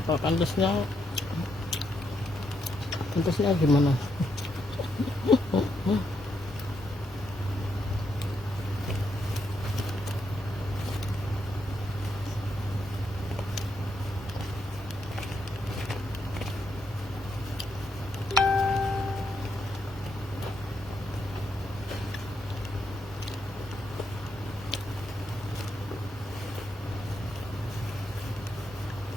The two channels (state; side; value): normal; both; correlation 0.79